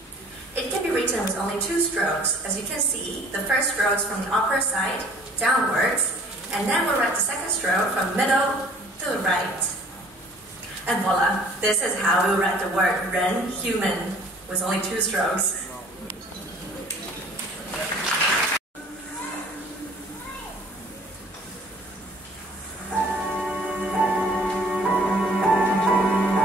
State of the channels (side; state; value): both; normal; correlation 0.53